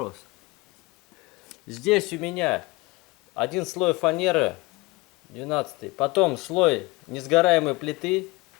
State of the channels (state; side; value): quieter; right; 23.3 dB